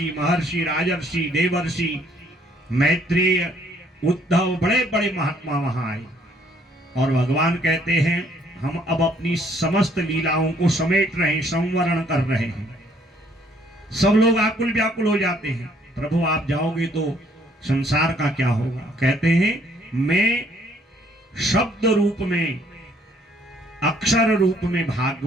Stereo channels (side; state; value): both; normal; correlation 0.64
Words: महर्षि राजर्षि देवर्षि मैत्रेय उद्धव बड़े बड़े महात्मा वहां आए। और भगवान कहते हैं हम अब अपनी समस्त लीलाओं को समेट रहे हैं, संवरण कर रहे हैं। सब लोग आकुल व्याकुल हो जाते हैं, प्रभु आप जाओगे तो संसार का क्या होगा। कहते हैं मैं शब्द रूप में, अक्षर रूप में